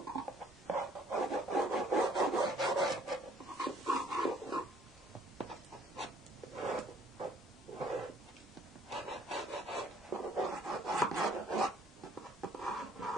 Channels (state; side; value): normal; both; correlation 0.60